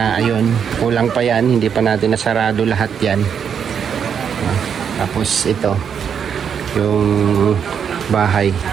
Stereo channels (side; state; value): left; quieter; 7.5 dB